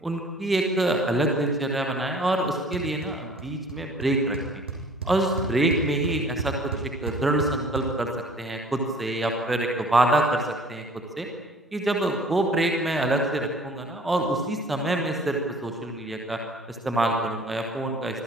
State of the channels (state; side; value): normal; both; correlation 0.50